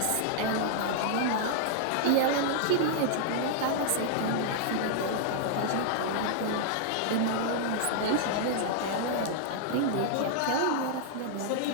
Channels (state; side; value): different; both; correlation -0.01